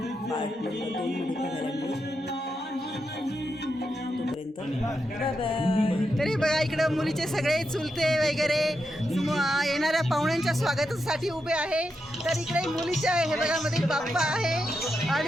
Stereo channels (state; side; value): normal; both; correlation 0.85